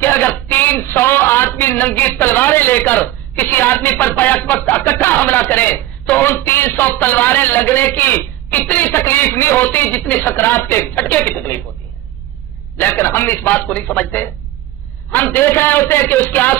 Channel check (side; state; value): left; quieter; 15.2 dB